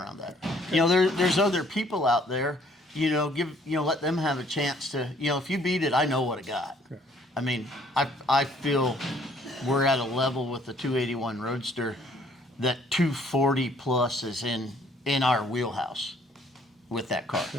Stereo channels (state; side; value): normal; both; correlation 0.62